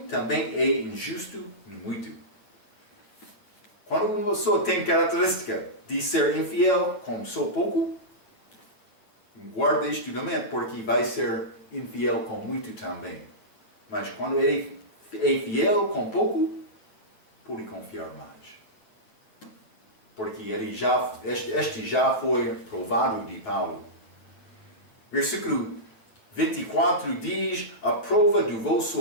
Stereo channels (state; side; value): late; right; 9.3 ms